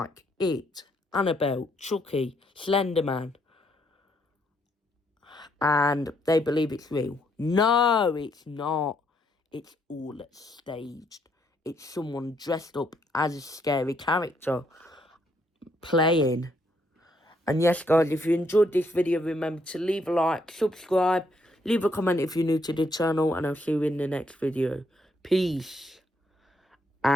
It, Annabelle, Chucky, Slenderman. And they believe it's real. No, it's not. It's all staged. It's someone dressed up as a scary character playing. And yes, guys, if you enjoyed this video, remember to leave a like, subscribe, leave a comment if you're new to the channel, and I'll see you in the next video. Peace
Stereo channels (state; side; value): normal; both; correlation 0.73